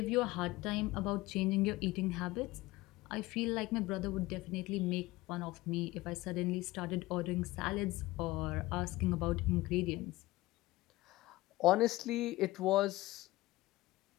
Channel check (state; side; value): quieter; right; 18.9 dB